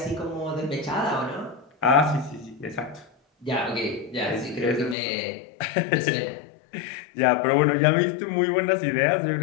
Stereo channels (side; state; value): right; drops out; at 5.0 s